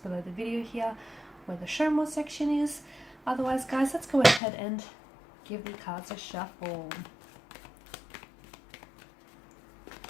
below the video here, where the show more section is. Otherwise, guys, let's go ahead and give the cards a shuffle.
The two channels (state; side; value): drops out; right; at 4.4 s